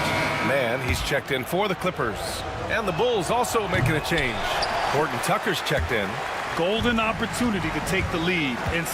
Man, he's checked in for the Clippers. And the Bulls also making a change. Horton Tucker's checked in. Golden opportunity to take the lead.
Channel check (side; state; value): both; identical; correlation 1.00